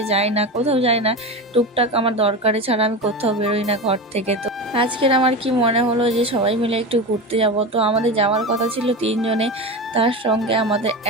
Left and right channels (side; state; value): both; normal; correlation 0.23